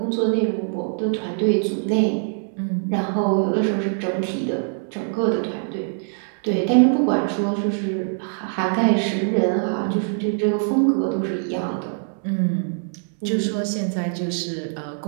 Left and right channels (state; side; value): silent; left; 63 dB below the other